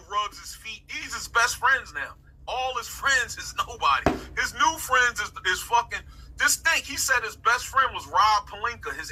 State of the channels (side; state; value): both; identical; correlation 1.00